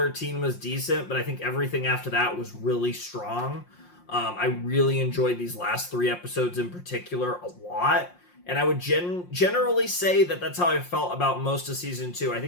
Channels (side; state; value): right; late; 5.6 ms